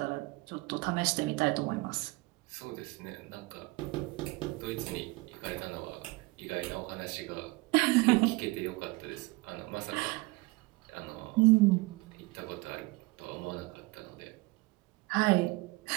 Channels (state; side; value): quieter; left; 23.5 dB